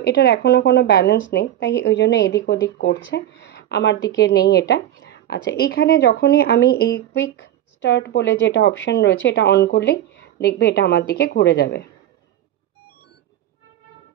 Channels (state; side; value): quieter; left; 12.1 dB